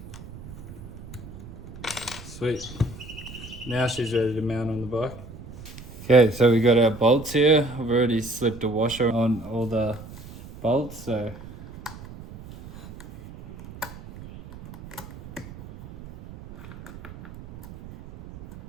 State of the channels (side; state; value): right; noise; rumble, 15 dB below the sound